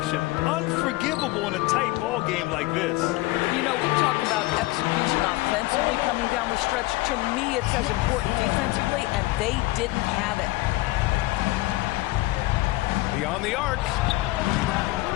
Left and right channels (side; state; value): right; quieter; 19.9 dB